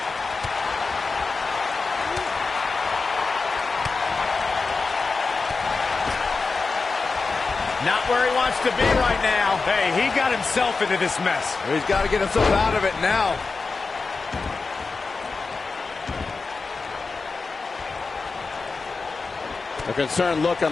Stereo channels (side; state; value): right; quieter; 4.3 dB